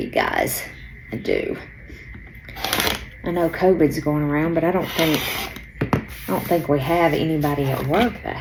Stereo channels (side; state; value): both; identical; correlation 1.00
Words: guys. I do. I know COVID's going around, but I don't think we have anybody at work that